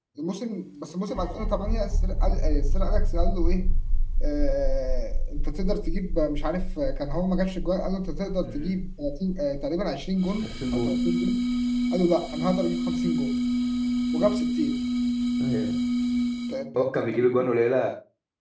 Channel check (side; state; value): both; identical; correlation 1.00